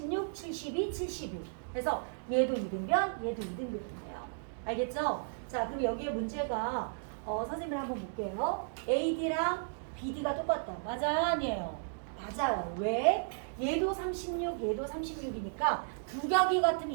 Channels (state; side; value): silent; left; digital silence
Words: 72, 72. 그래서 얘도 이등변, 얘도 이등변이에요. 알겠죠? 자, 그럼 여기에 문제가 선생님을 한번 볼게요. AD랑 BD가 똑같다. 맞아요? 아니에요? 맞아요. 왜? 얘도 36, 얘도 36이니까 두 격이 같으면